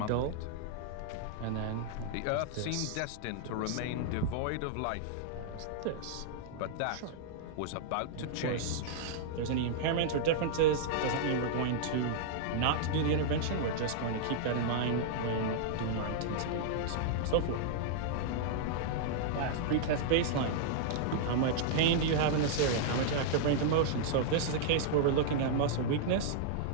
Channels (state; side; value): different; both; correlation -0.01